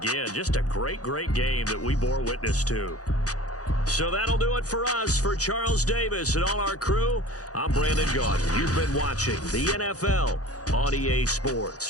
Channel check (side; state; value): right; late; 0.67 ms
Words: just a great, great game that we bore witness to. So that'll do it for us. For Charles Davis and all our crew, I'm Brandon Gaudin. You've been watching the NFL on EA